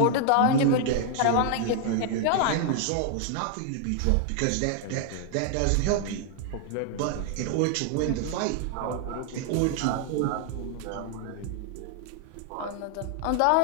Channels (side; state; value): both; different; correlation 0.00